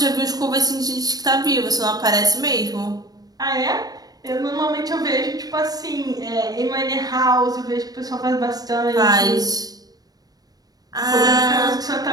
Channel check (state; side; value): late; left; 0.19 ms